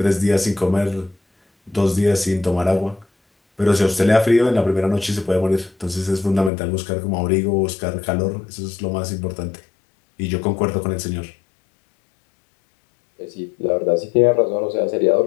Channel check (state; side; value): drops out; right; at 6.5 s